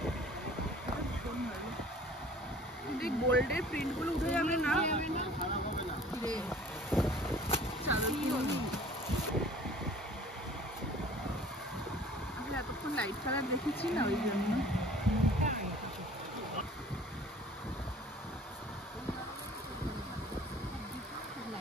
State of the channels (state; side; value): normal; both; correlation 0.49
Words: গোল্ডের প্রিন্ট গুলো উঠে যাবে না চাদর আমি এতক্ষণ লাইট কালার দেখেছি না ওই জন্য